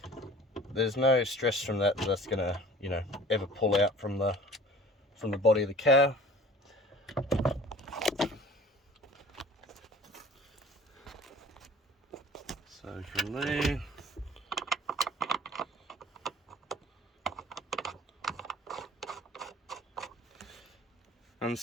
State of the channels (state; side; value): normal; both; correlation 0.46